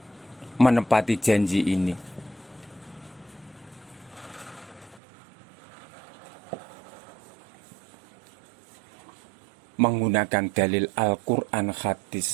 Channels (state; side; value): drops out; left; at 5.0 s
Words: Menepati janji ini menggunakan dalil Al-Quran,